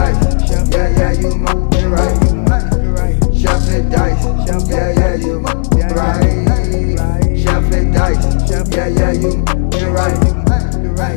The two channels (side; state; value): right; silent; digital silence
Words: yeah, you my right. Chef and dice, yeah, you my right. Chef and dice, yeah, you right.